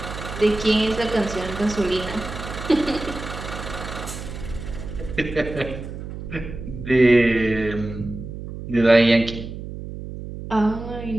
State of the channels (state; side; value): noise; right; hum, 9 dB below the sound